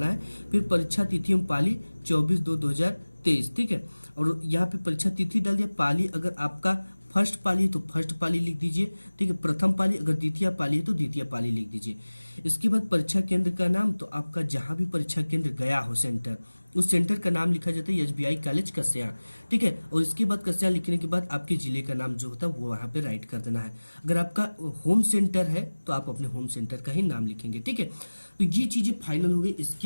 है। फिर परीक्षा तिथि एवं पाली 24/2/2023। ठीक है, और यहाँ पे परीक्षा तिथि डाल दिया। पाली अगर आपका फर्स्ट पाली है तो फर्स्ट पाली लिख दीजिए। ठीक है, प्रथम पाली अगर द्वितीय पाली है तो द्वितीय पाली लिख दीजिए। इसके बाद परीक्षा केंद्र का नाम, तो आपका जहां भी परीक्षा केंद्र गया हो सेंटर, उस सेंटर का नाम लिखा जाता है SBI कॉलेज कस्या। ठीक है, और इसके बाद कस्या लिखने के बाद आपके जिले का नाम जो होता है वो वहां पे राइट कर देना है। अगर आपका होम सेंटर है तो आप अपने होम सेंटर का ही नाम लिखेंगे। ठीक है, तो ये चीजें फाइनल हो गई।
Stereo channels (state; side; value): inverted; both; correlation -1.00